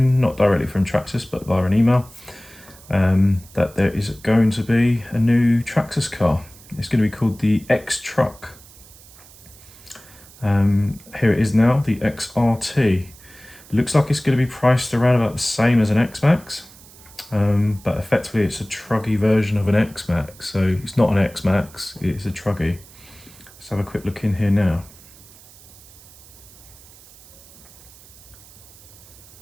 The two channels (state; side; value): noise; right; hiss, 22 dB below the sound